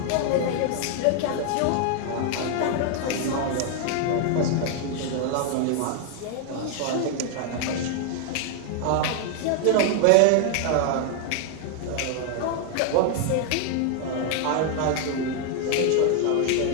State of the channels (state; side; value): different; both; correlation 0.00